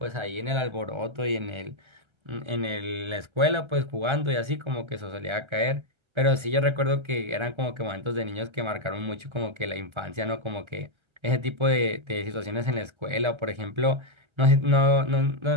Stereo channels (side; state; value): left; late; 1.3 ms